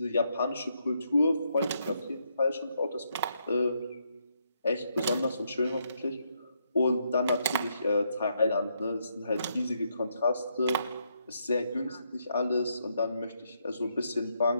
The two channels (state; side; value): inverted; both; correlation -0.77